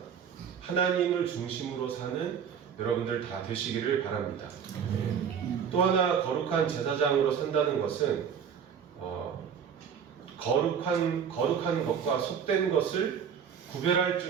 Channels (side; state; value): left; quieter; 7.6 dB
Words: 하나님을 중심으로 사는 여러분들 다 되시기를 바랍니다. 또 하나 거룩한 제사장으로 산다는 것은 거룩한 것과 속된 것을 구별할